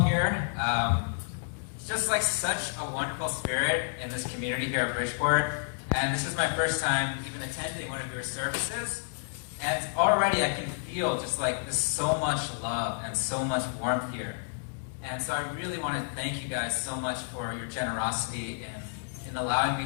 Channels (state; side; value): silent; right; digital silence